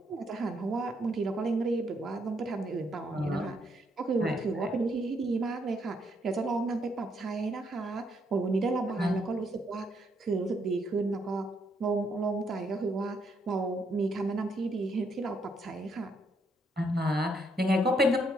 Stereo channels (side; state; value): both; normal; correlation 0.74